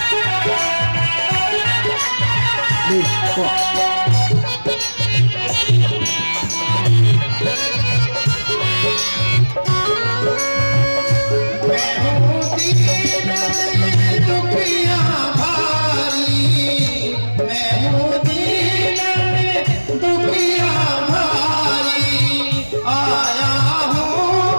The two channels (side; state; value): both; inverted; correlation -1.00